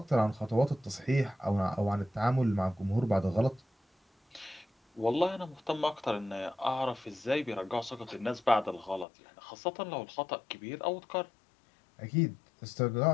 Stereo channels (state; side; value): drops out; right; at 9.1 s